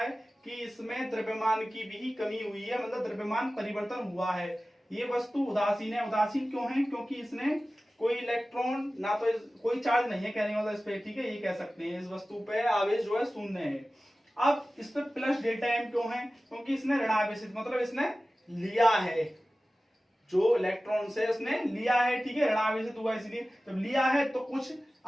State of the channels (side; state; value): both; normal; correlation 0.96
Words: कि इसमें द्रव्यमान की भी कमी हुई है, मतलब द्रव्यमान परिवर्तन हुआ है। ये वस्तु उदासीन है। उदासीन क्यों है, क्योंकि इसने कोई इलेक्ट्रॉन ना तो कोई चार्ज नहीं है कहने वाला इस पे, ठीक है, ये कह सकते हैं इस वस्तु पे आवेश जो है शून्य है। अब इस पे प्लस डेल्टा एम क्यों है, क्योंकि इसने ऋणावेशित मतलब इसने लिया है, जो इलेक्ट्रॉन से उसने लिया है, ठीक है, ऋणावेशित हुआ इसलिए। जब लिया है तो कुछ